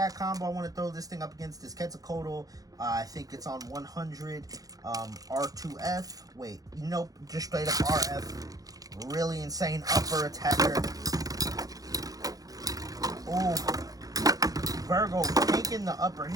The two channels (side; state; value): left; late; 0.17 ms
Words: combo I want to throw this thing up against is Quetzalcoatl. I think it's on 100 R2F. Wait, nope, just straight up RF. Really insane upper attacker. Oh, VIRGO tanking the upper